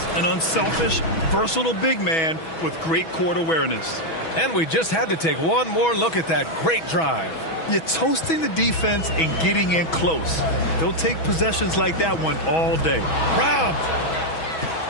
an unselfish, versatile big man with great court awareness. And we just had to take one more look at that great drive. You're toasting the defense and getting in close. They'll take possessions like that one all day. Robbed.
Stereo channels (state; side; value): late; right; 6.2 ms